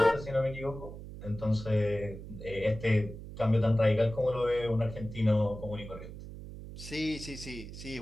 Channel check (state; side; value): noise; right; hum, 12 dB below the sound